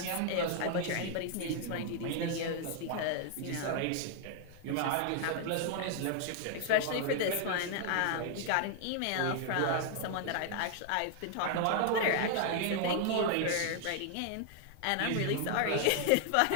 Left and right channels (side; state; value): both; different; correlation 0.00